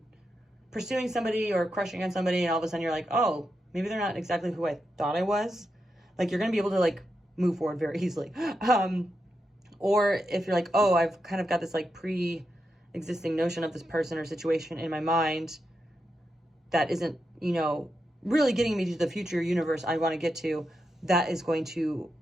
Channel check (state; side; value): normal; both; correlation 0.86